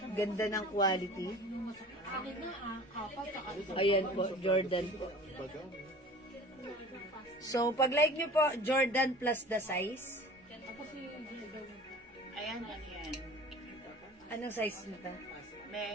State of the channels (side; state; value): both; normal; correlation 0.42